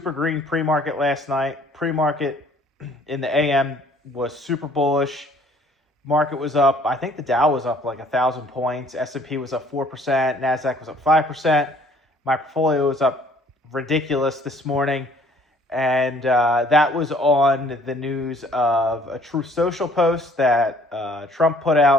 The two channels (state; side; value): normal; both; correlation 0.58